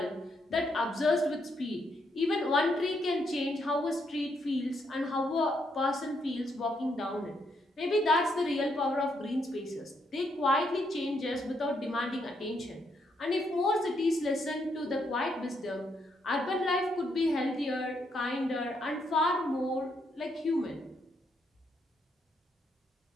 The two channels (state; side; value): normal; both; correlation 0.76